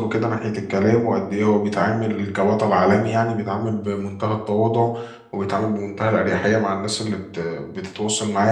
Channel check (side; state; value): both; identical; correlation 1.00